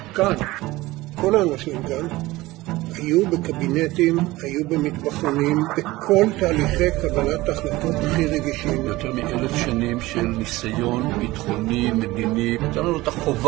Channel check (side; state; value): left; quieter; 19.1 dB